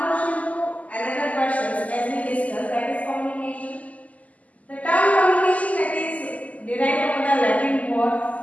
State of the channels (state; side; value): late; right; 0.073 ms